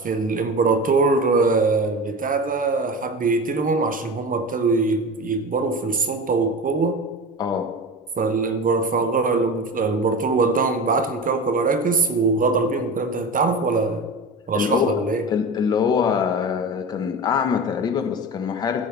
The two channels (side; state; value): both; normal; correlation 0.29